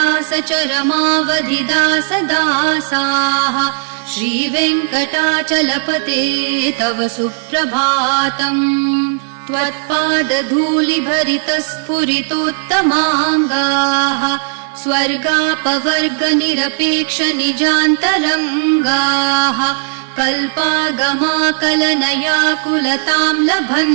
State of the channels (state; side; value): silent; left; digital silence